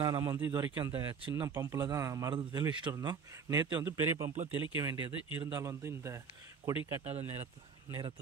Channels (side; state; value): left; quieter; 6.1 dB